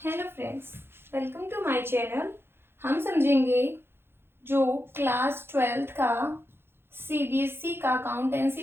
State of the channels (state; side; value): late; left; 0.11 ms